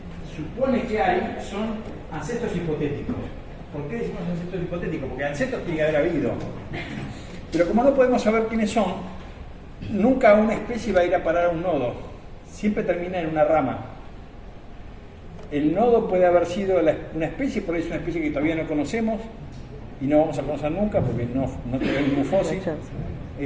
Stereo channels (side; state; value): both; identical; correlation 1.00